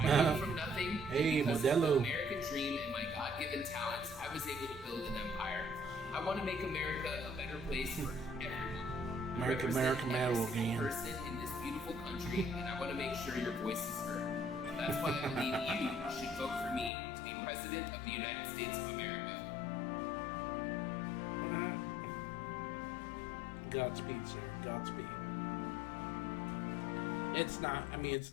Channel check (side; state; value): right; drops out; at 16.9 s